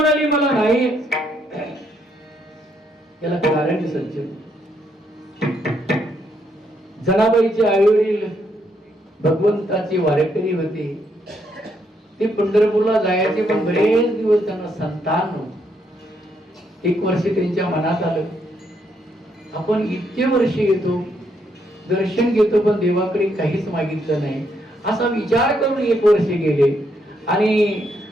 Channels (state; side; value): normal; both; correlation 0.75